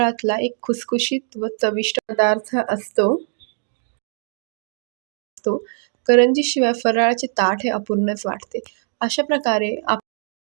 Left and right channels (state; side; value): silent; left; 65 dB below the other